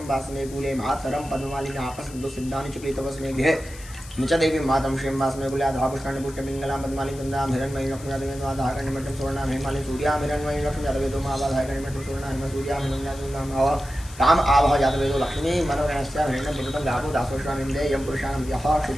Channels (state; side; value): noise; left; hiss, 18 dB below the sound